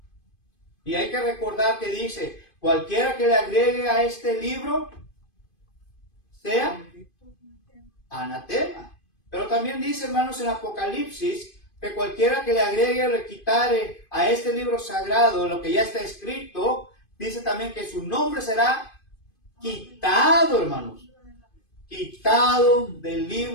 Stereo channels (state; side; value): late; right; 2.5 ms